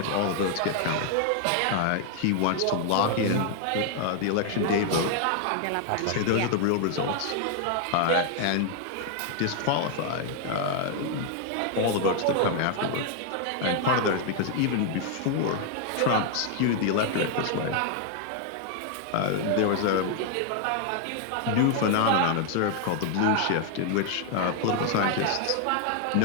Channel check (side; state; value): both; different; correlation 0.00